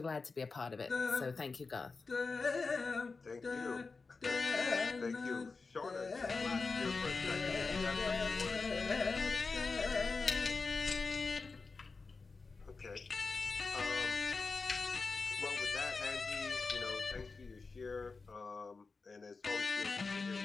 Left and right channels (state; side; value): quieter; right; 4.3 dB